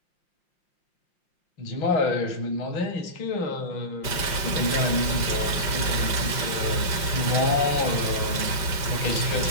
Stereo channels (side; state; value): right; late; 5.7 ms